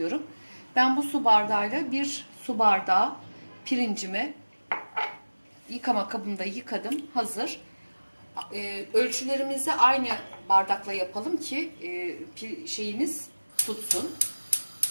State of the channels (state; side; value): inverted; both; correlation -1.00